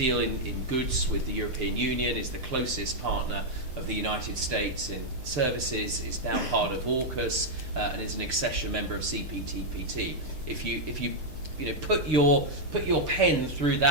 in goods with the European Union, is the closest partner of the United States in services, is now part of AUKUS, and is an accession member of CPTPP. If you put your pen through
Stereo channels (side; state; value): left; late; 6.5 ms